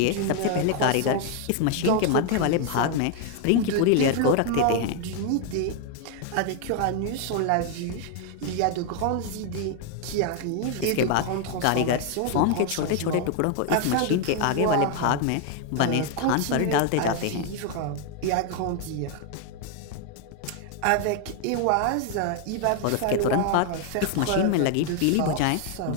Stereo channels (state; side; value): different; both; correlation 0.00